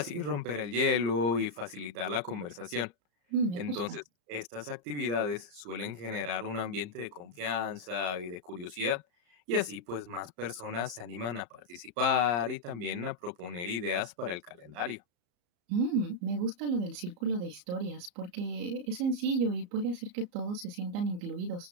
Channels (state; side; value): late; left; 34 ms